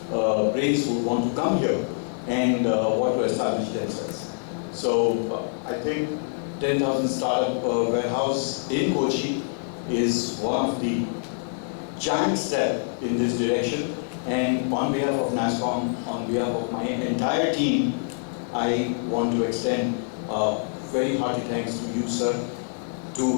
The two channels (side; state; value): right; silent; 61 dB below the other